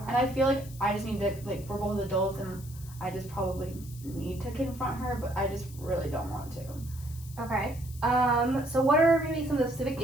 And I feel like I just need to, like, we're both adults and I just probably need to confront her, but I just really don't want to. Okay. So what are maybe some of the specific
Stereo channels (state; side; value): noise; left; hiss, 19 dB below the sound